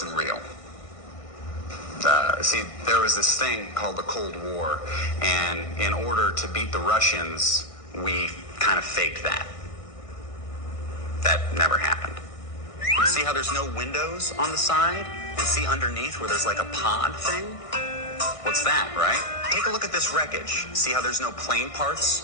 real. See, there was this thing called the Cold War, and in order to beat the Russians, we kind of faked that. That never happened. See how there's no windows on the side? And see underneath where there's like a pod thing? What's that, right? Take a look at this wreckage. See how there's no plane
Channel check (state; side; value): late; right; 1.6 ms